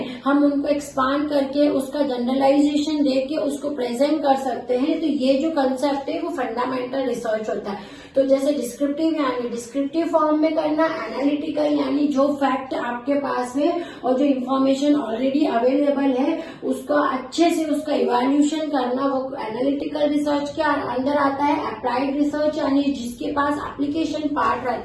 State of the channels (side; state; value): both; identical; correlation 1.00